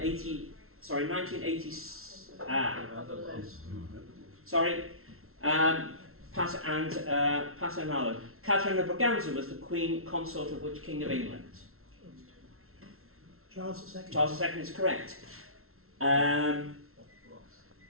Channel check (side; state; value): left; late; 0.62 ms